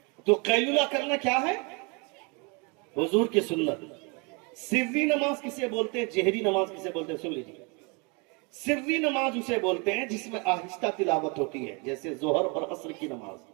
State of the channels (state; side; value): quieter; left; 30.7 dB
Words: تو قیلولہ کرنا کیا ہے؟ حضور کی سنت. سری نماز کسے بولتے ہیں, جہری نماز کسے بولتے ہیں؟ سن لیجیے. سری نماز اسے بولتے ہیں جس میں آہستہ تلاوت ہوتی ہے, جیسے ظہر اور عصر کی نماز.